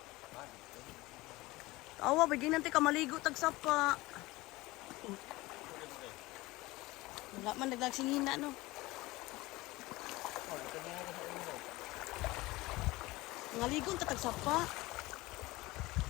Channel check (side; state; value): right; quieter; 20.4 dB